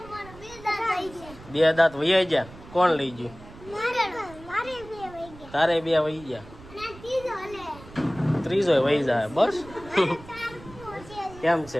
બે દાંત વહી ગયા કોણ લઈ ગયું તારે બે વહી ગયા ત્રીજો વહી જાય બસ કેમ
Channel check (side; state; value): right; noise; rumble, 19 dB below the sound